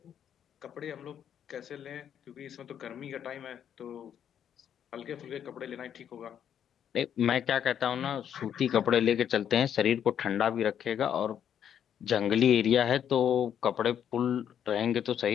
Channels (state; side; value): quieter; right; 9.1 dB